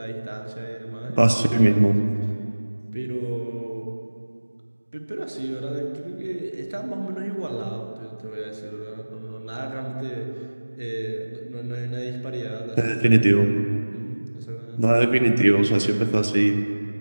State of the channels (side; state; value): both; inverted; correlation -1.00